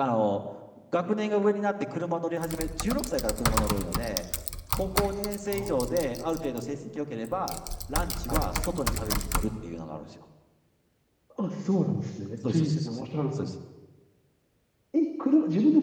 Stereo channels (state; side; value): identical; both; correlation 1.00